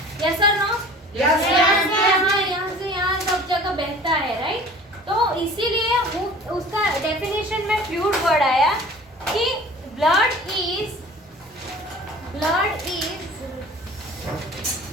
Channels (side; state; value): both; normal; correlation 0.44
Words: यस और नो? यहाँ से यहाँ सब जगह बहता है, राइट? तो इसीलिए वो उसका डेफिनेशन में फ्लूइड वर्ड आया कि blood is